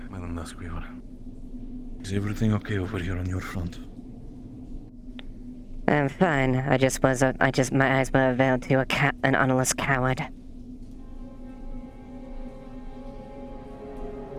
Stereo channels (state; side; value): identical; both; correlation 1.00